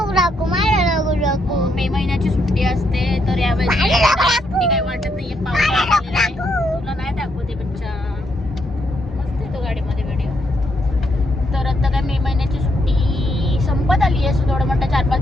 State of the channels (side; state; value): both; normal; correlation 0.77